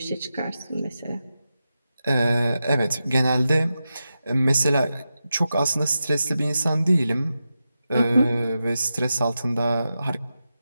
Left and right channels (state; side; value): inverted; both; correlation -0.90